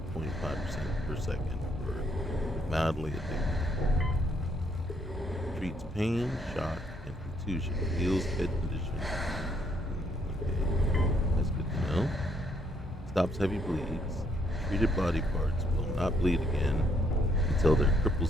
0.5% per second for mildly addicted. Treats pain, shock, and contusion. Heals head condition. Okay, that's good to know. Stops heavy bleeds. Treated body parts will not bleed again until their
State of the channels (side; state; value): both; normal; correlation 0.70